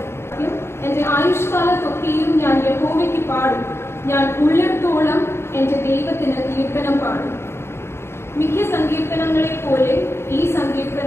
എന്റെ ആയുഷ്കാലത്തൊക്കെയും ഞാൻ യഹോവയ്ക്ക് പാടും. ഞാൻ ഉള്ളിടത്തോളം എന്റെ ദൈവത്തിന് കീർത്തനം പാടും. മിക്ക സങ്കീർത്തനങ്ങളെ പോലെ ഈ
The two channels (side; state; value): right; late; 0.12 ms